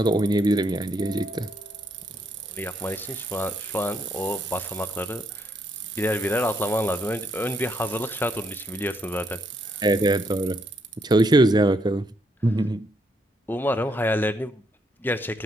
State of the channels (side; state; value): both; normal; correlation 0.74